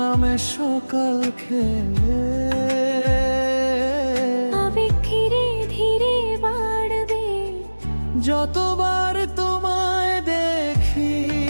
নামে সকাল খেলে। আবেগ ধীরে ধীরে বাড়বে যতবার তোমায় দেখি,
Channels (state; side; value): inverted; both; correlation -1.00